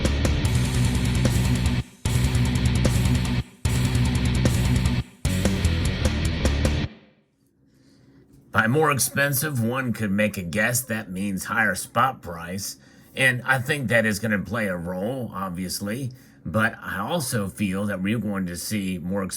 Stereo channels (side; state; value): both; identical; correlation 1.00